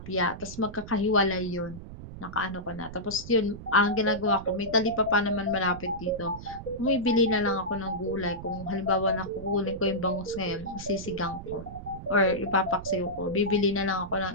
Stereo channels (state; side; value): noise; right; rumble, 13 dB below the sound